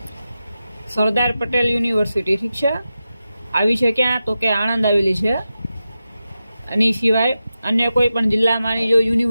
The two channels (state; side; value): inverted; both; correlation -0.91